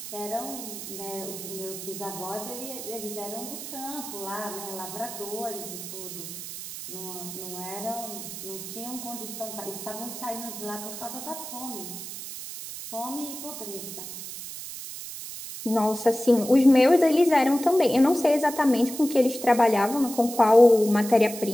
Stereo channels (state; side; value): noise; right; hiss, 10 dB below the sound